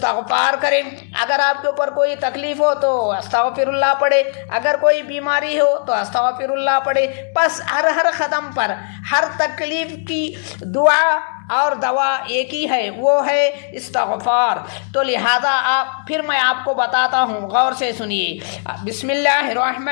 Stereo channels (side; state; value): right; silent; digital silence